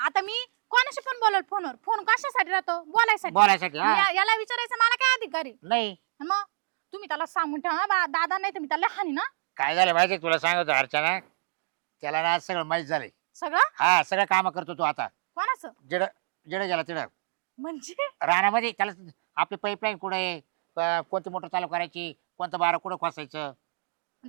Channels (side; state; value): left; silent; digital silence